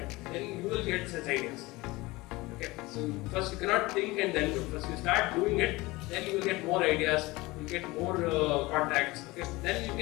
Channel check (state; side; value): quieter; right; 21.5 dB